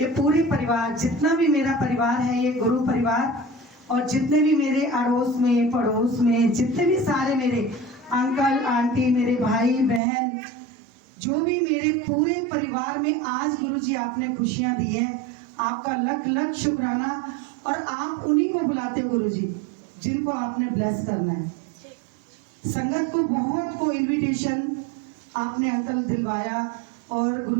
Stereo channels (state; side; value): drops out; left; at 10.0 s